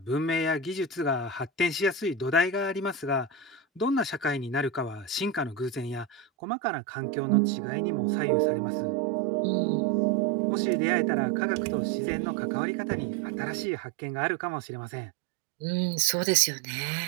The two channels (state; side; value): drops out; left; at 6.2 s